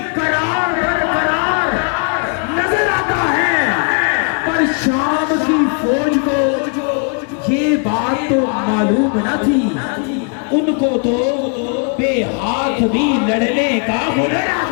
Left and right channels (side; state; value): right; quieter; 39.4 dB